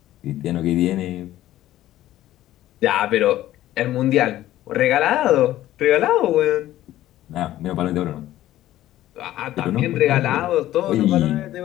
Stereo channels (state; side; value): quieter; right; 14.1 dB